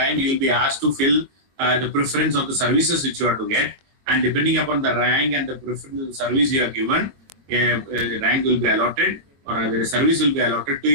you will be asked to fill the preference of the services which you are to get, and depending upon the rank and the preference of the service you are given, a rank will be allotted, or a service will be allotted to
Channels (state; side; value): late; left; 22 ms